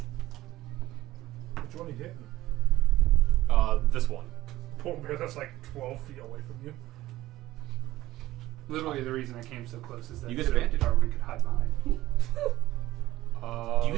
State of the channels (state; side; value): quieter; left; 16.1 dB